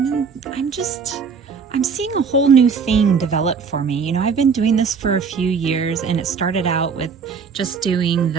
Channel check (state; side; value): quieter; left; 5.8 dB